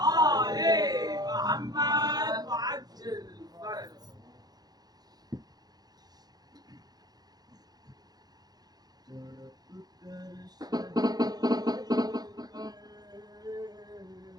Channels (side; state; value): left; late; 0.19 ms